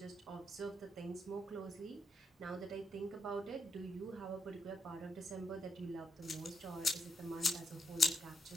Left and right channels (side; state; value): both; normal; correlation 0.78